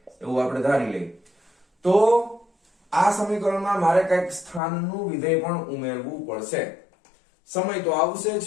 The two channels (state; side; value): drops out; right; at 4.6 s